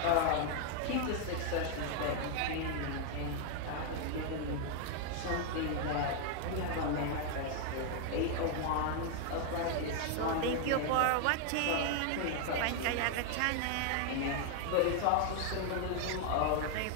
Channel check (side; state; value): both; different; correlation 0.00